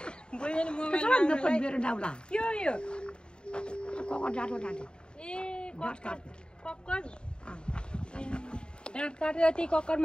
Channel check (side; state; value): right; late; 0.050 ms